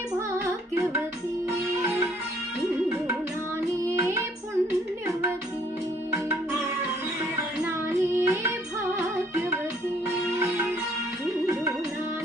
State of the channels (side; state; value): both; normal; correlation 0.62